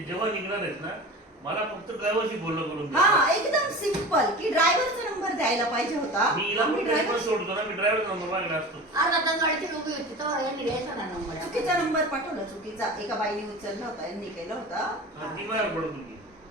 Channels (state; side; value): normal; both; correlation 0.34